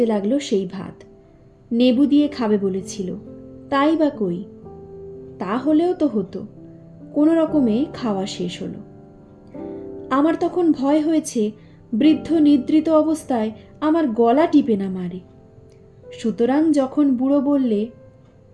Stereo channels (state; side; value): identical; both; correlation 1.00